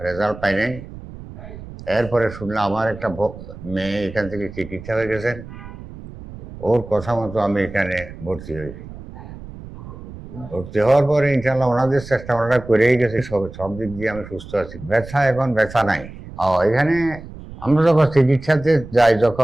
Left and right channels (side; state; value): right; noise; rumble, 15 dB below the sound